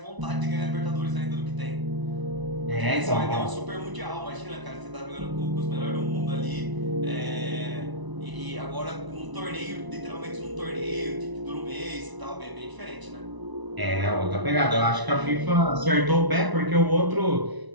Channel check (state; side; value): late; left; 1.0 ms